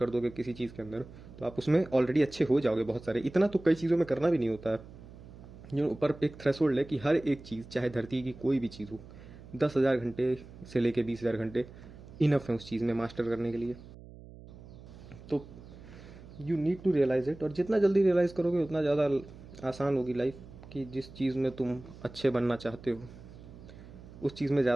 दोगे किसी चीज़ के अंदर तो आप उसमें ऑलरेडी अच्छे हो जाओगे बहुत सारे। इतना तो कई चीज़ों में करना भी नहीं होता है। जो ऊपर एक थ्रेशोल्ड है कि हर एक चीज़ चाहे धरती की कोई भी चीज़ हो, 10,000 घंटे से लेके 20,000 घंटे इनफ है उस चीज़ में मास्टर करने के लिए। तो you need to realize it, और जितना जल्दी रियलाइज़ करोगे उतना ज़्यादा आसान होगी लाइफ। कि जिस चीज़ में तुम अच्छे बनना चाहते हो उस चीज़ में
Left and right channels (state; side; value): noise; right; hum, 18 dB below the sound